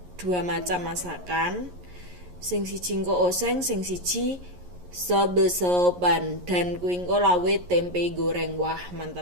dua macam masakan, sing siji engko oseng, sing siji sobe-soban, dan kuwi engko lawe tempe goreng. Wah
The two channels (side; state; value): left; late; 11 ms